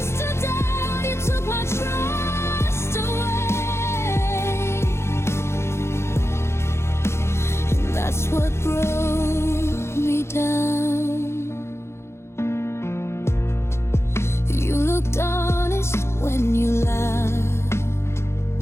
to doubt. You took my trust away, and that's what broke me down. You looked honest when you laughed.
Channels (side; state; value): right; late; 0.13 ms